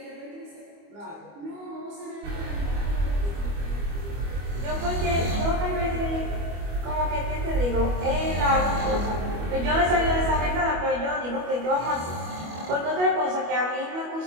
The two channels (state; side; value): late; left; 25 ms